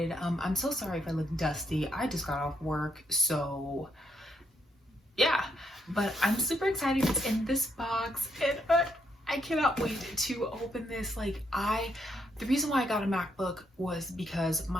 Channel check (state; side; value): normal; both; correlation 0.76